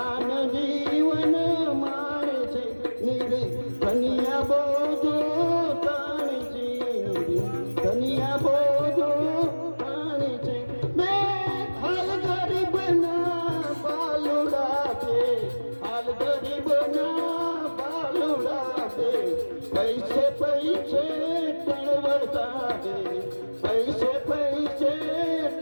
જીવન માણે છે, કન્યા બોજો તાણે છે, કન્યા બોજો તાણે છે. મેં હાલ ગરીબના બાલુડા છે, હાલ ગરીબના બાલુડા છે, પૈસે પૈસે તળવડતા છે, પૈસે પૈસે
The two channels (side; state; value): both; inverted; correlation -1.00